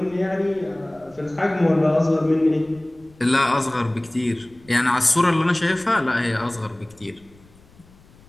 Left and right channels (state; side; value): noise; left; rumble, 27 dB below the sound